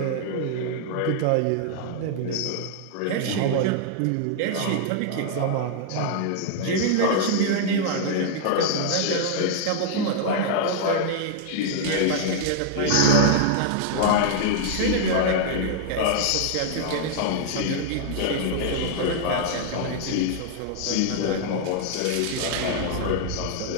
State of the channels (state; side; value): different; both; correlation -0.01